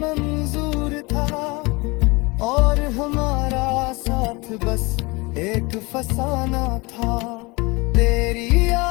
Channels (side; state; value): right; quieter; 25.4 dB